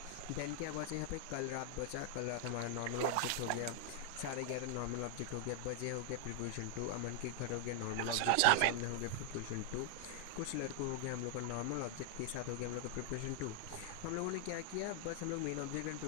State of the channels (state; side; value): different; both; correlation 0.00